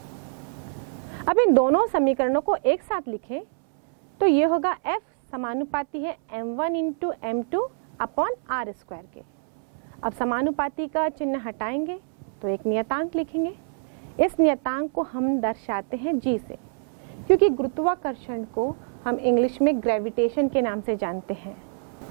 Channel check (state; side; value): silent; left; 61 dB below the other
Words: अब इन दोनों समीकरणों को एक साथ लिखें तो ये होगा F समानुपाती है m1 into m2 upon r square के। अब समानुपाती का चिन्ह हटाएंगे तो एक नियतांक लिखेंगे। इस नियतांक को हम दर्शाते हैं g से, क्योंकि गुरुत्वाकर्षण को हम इंग्लिश में ग्रेविटेशन के नाम से जानते हैं।